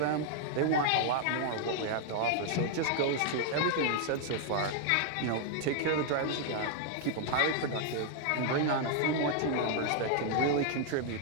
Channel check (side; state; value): both; different; correlation 0.00